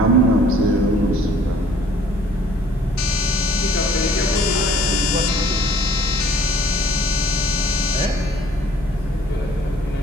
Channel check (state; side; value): normal; both; correlation 0.56